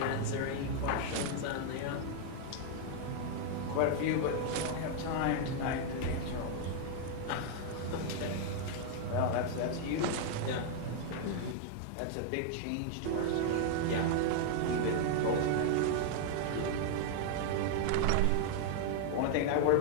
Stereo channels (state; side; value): different; both; correlation 0.00